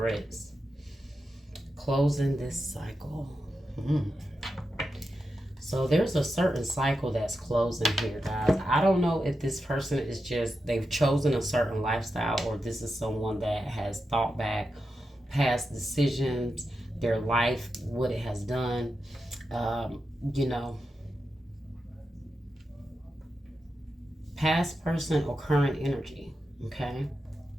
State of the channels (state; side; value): normal; both; correlation 0.89